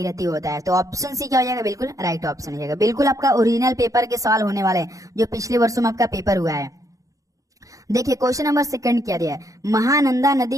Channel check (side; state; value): left; late; 0.16 ms